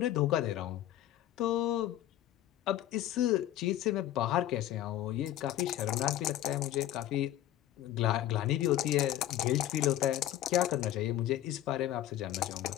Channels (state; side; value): quieter; right; 13.0 dB